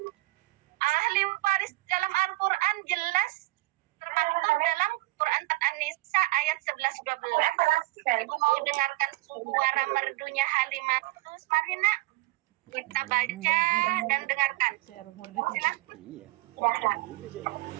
Ahli waris dalam Al-Quran jelas termaktub dalam Quran An-Nisa ayat 11-12. Ibu mau dengarkan suara merdunya Halimatus? Mari nak, kita baca dan dengarkan. Silakan. Iya.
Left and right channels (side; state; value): left; quieter; 19.9 dB